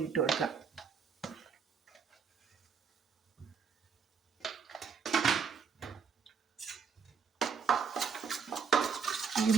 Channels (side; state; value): left; quieter; 6.2 dB